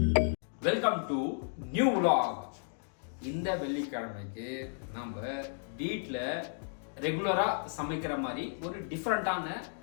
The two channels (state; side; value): silent; right; digital silence